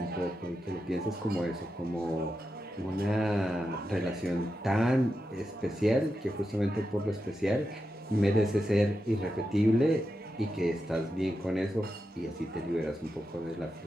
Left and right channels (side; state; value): both; normal; correlation 0.88